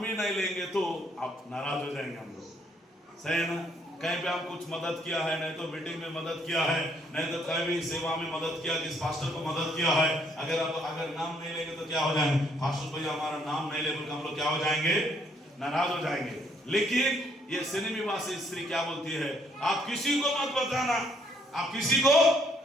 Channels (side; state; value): both; normal; correlation 0.68